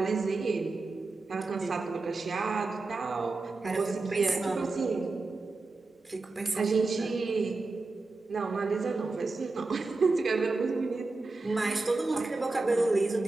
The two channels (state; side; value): quieter; left; 3.5 dB